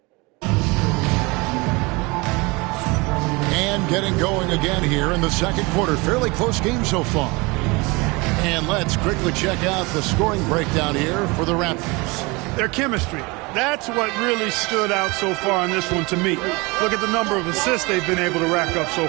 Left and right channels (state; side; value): quieter; left; 25.7 dB